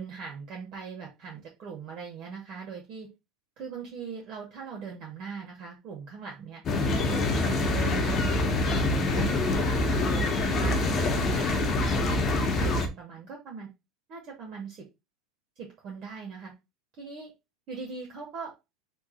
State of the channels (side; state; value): both; normal; correlation 0.48